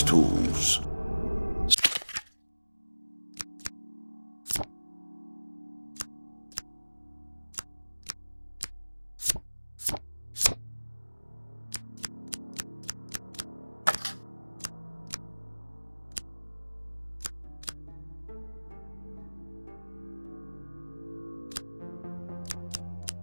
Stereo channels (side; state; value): both; inverted; correlation -1.00